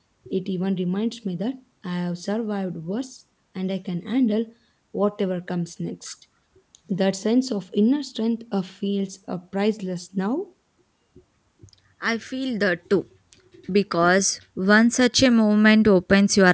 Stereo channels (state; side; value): identical; both; correlation 1.00